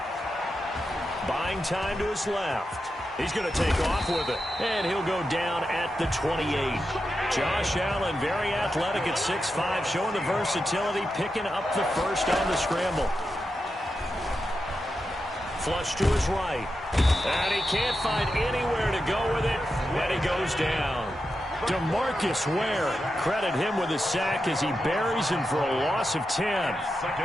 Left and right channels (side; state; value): both; normal; correlation 0.89